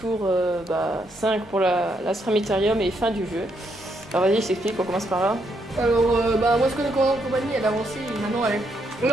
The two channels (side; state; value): both; normal; correlation 0.76